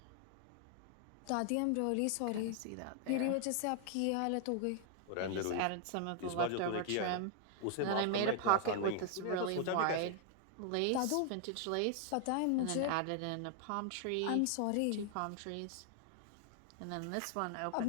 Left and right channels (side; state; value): both; different; correlation 0.00